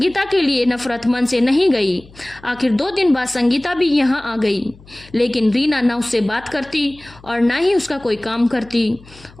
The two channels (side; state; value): left; noise; hum, 24 dB below the sound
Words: के लिए नफरत मन से नहीं गई। आखिर 2 दिन बाद संगीता भी यहाँ आ गई, लेकिन रीना ना उससे बात करती और ना ही उसका कोई काम करती